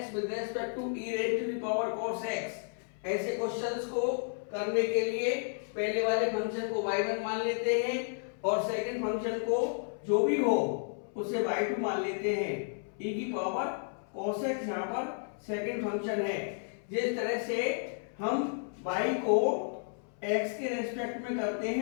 with respect to e raise to the power cos x। ऐसे क्वेश्चंस को करने के लिए पहले वाले फंक्शन को y1 मान लेते हैं और सेकंड फंक्शन को जो भी हो उसे y2 मान लेते हैं। e की पावर cos x यहाँ पर सेकंड फंक्शन है। जिस तरह से हम y को x के रेस्पेक्ट में करते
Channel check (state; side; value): silent; right; 56 dB below the other